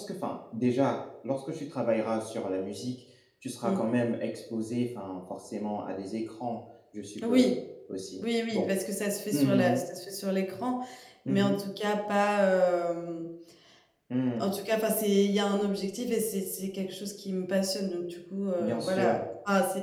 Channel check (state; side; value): identical; both; correlation 1.00